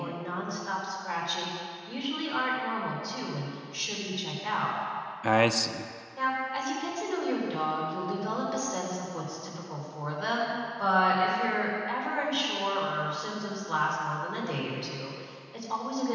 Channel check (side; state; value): both; identical; correlation 1.00